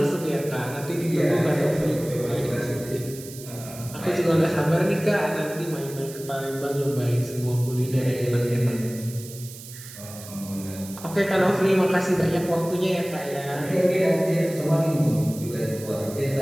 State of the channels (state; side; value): noise; right; hiss, 15 dB below the sound